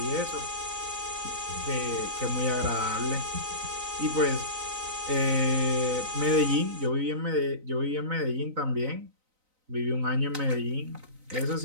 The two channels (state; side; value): late; left; 3.9 ms